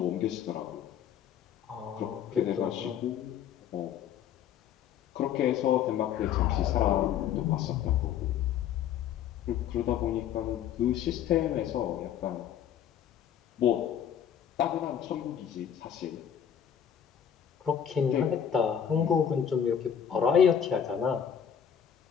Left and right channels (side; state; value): right; quieter; 8.9 dB